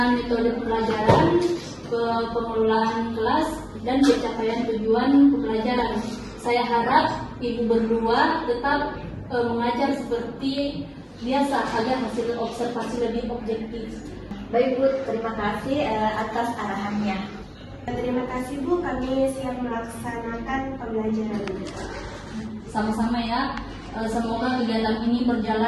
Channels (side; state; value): both; identical; correlation 1.00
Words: metode pembelajaran, pengelolaan kelas, dan pencapaian tujuan pembelajaran. Saya harap Ibu berdua tetap mengajar seperti biasa agar hasil observasi lebih objektif. Baik Bu, terima kasih atas arahannya. Terima kasih Bu, kami siap melaksanakan pembelajaran. Sama-sama ya. Semoga kegiatan ini